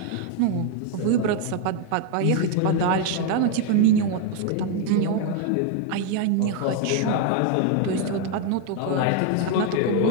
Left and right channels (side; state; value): both; different; correlation 0.01